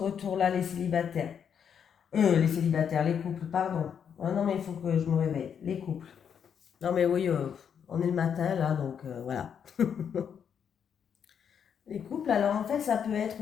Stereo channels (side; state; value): right; quieter; 7.8 dB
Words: les célibataires. Les célibataires, les couples, pardon. Ah non, mais il faut que je me réveille. Les couples. Non, mais oui, on est le matin là, donc voilà. Les couples, alors en fait, ça peut être